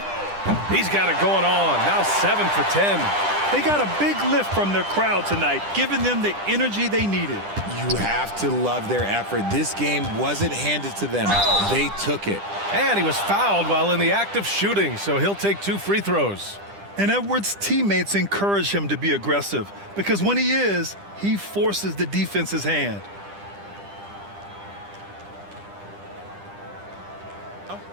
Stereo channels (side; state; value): left; late; 10 ms